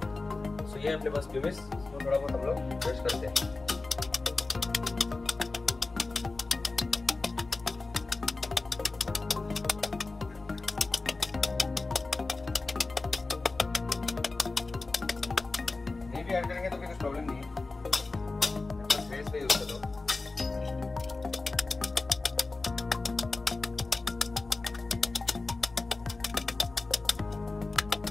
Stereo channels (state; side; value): quieter; right; 3.5 dB